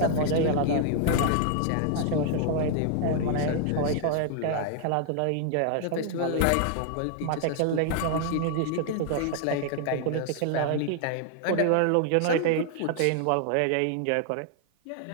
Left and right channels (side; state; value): both; different; correlation 0.00